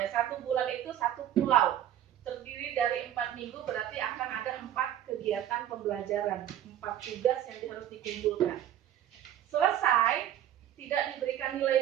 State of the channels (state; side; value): quieter; left; 11.3 dB